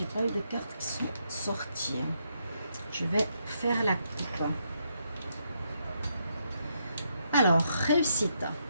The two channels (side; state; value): both; inverted; correlation -0.78